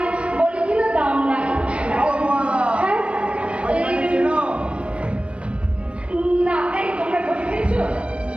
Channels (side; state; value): left; late; 0.060 ms